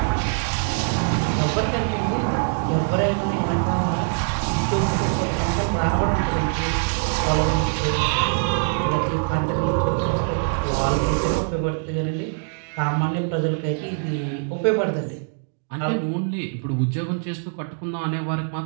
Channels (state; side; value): silent; left; 63 dB below the other